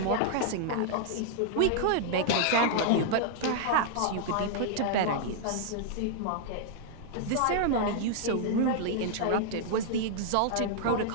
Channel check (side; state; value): both; different; correlation -0.01